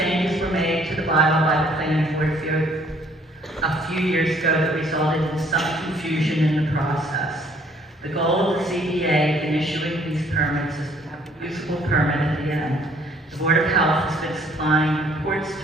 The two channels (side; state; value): both; normal; correlation 0.61